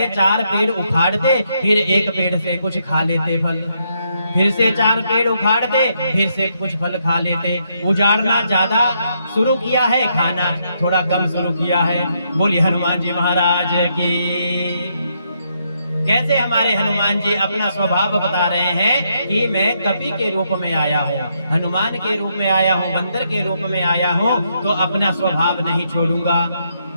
4 पेड़ उखाड़ते, फिर एक पेड़ से कुछ खा लेते फल, फिर से 4 पेड़ उखाड़ते, फिर से कुछ फल खा लेते। उजाड़ना ज्यादा शुरू किया है, खाना थोड़ा कम शुरू किया है। बोलिए हनुमान जी महाराज की। कैसे हमारे हनुमान जी अपना स्वभाव बता रहे हैं कि मैं कपि के रूप में आया हूँ, हनुमान के रूप में आया हूँ, बंदर के रूप में आया हूँ, तो अपना स्वभाव नहीं छोड़ूंगा।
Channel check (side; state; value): both; inverted; correlation -0.77